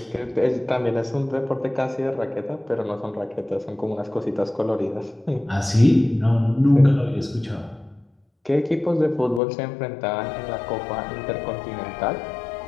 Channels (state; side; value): drops out; right; at 9.4 s